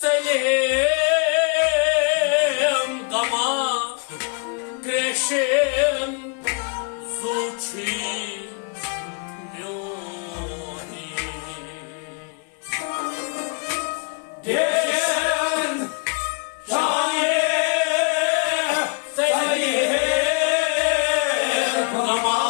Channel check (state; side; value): quieter; right; 36.4 dB